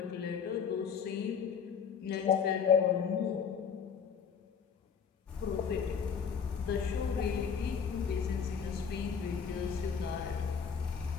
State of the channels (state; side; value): quieter; right; 6.8 dB